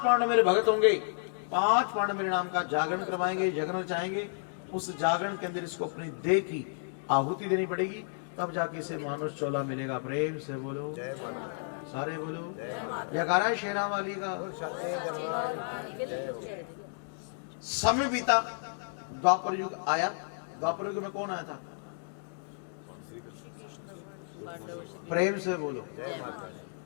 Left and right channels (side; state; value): right; silent; digital silence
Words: पांडव मेरे भगत होंगे, 5 पांडव मेरे नाम का जागरण करवाएंगे, यज्ञ चाहेंगे। उस जागरण के अंदर इसको अपनी देह की आहुति देनी पड़ेगी, तब जाके इसे मानुष चोला मिलेगा। प्रेम से बोलो जय माता। सारे बोलो जयकारा शेरा वाली का। समय बीता, द्वापर युग आया। द्वापर युग में कौन आया था? प्रेम से बोलो।